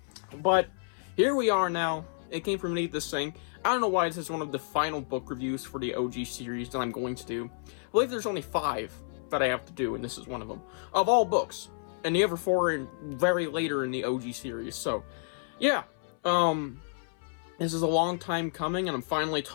But here we are now. It Came From Beneath the Sink. I don't know why this is one of the final book reviews for the OG series that I'm going to do. I believe there's only 5 that I have to do, and this is one of them. Of all books. And the other 4 are very later in the OG series. So, yeah. This is a long time coming, and I'm finally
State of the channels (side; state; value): right; silent; 58 dB below the other